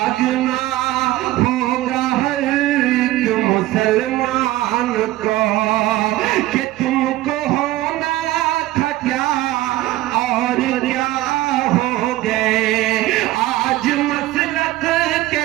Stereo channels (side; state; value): left; quieter; 16.5 dB